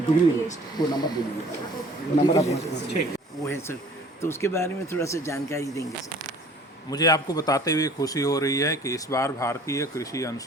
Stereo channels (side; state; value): both; normal; correlation 0.50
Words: डिग्री वो नंबर दे दीजिए, वो नंबर आप वो है सर, तो उसके बारे में थोड़ा सा जानकारी देंगे सर। मुझे आपको बताते हुए खुशी हो रही है कि इस बार भारतीय कृषि